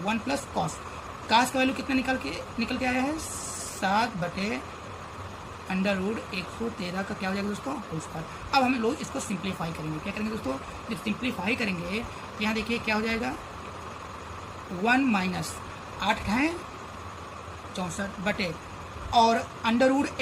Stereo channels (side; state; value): both; identical; correlation 1.00